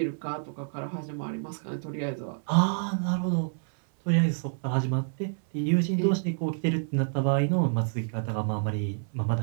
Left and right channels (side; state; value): left; silent; digital silence